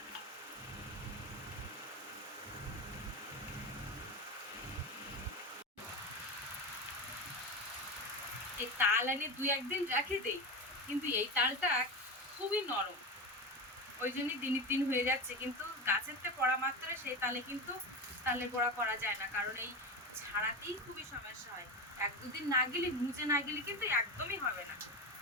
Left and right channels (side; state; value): both; normal; correlation 0.20